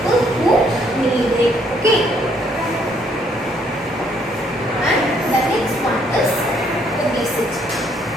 who need it. Okay. And the next one is obesity.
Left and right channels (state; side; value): normal; both; correlation 0.67